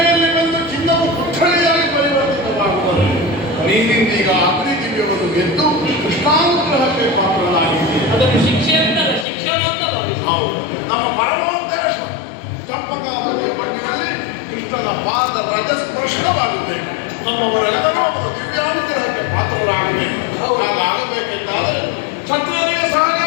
ಬಂದು ಚಿನ್ನವು ಕುಠಳಿಯಾಗಿ ಪರಿವರ್ತಿತವಾಗುತ್ತದೆ. ನೀನಿಂದೀಗ ಅಗ್ನಿ ದಿವ್ಯವನ್ನು ಗೆದ್ದು ಕೃಷ್ಣಾನುಗ್ರಹಕ್ಕೆ ಪಾತ್ರನಾಗಿದ್ದೀಯ. ಅದನ್ನು ಶಿಕ್ಷೆ ಅಂತಲ್ಲ, ಶಿಕ್ಷಣ ಅಂತ ಭಾವಿಸಿ. ಹೌದು, ನಮ್ಮ ಪರಮೋದ್ದೇಶ ಚಂಪಕಾವತಿಯ ಮಣ್ಣಿನಲ್ಲಿ ಕೃಷ್ಣನ ಪಾದ ರಜಸ್ಪರ್ಶವಾಗಬೇಕು. ನಮ್ಮವರೆಲ್ಲರೂ ಅವರ ದಿವ್ಯಾನುಗ್ರಹಕ್ಕೆ ಪಾತ್ರರಾಗಬೇಕು. ಹಾಗಾಗಬೇಕೆಂದಾದರೆ ಕ್ಷತ್ರಿಯರಿಗೆ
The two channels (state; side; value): drops out; right; at 9.2 s